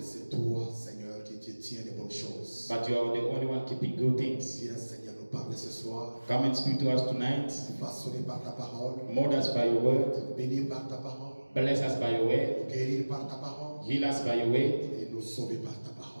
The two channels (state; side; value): inverted; both; correlation -1.00